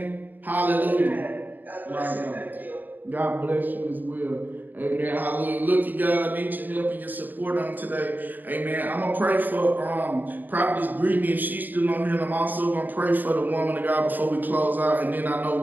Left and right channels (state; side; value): late; left; 0.087 ms